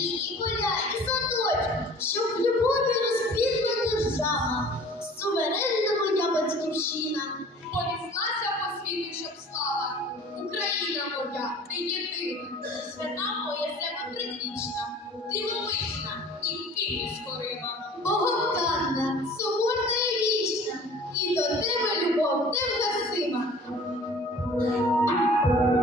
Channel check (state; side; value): normal; both; correlation 0.46